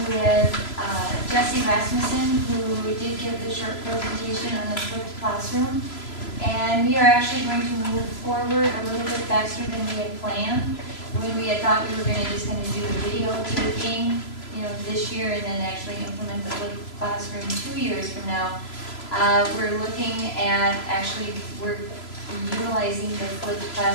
with Jesse Rasmussen, who did give the short presentation on the flipped classroom. And we are actually going to move forward a little bit faster than we had planned. When we had thought we were gonna just do the video taping, this year, and then actually implement the flipped classroom 2 years from now. We're looking at we're utilizing the flipped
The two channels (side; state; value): right; late; 3.0 ms